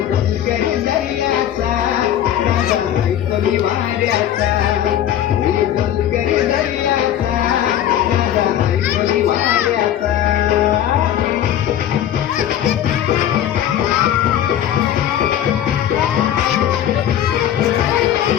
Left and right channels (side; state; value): right; quieter; 10.9 dB